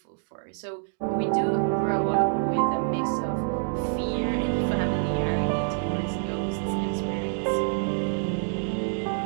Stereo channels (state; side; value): silent; left; 60 dB below the other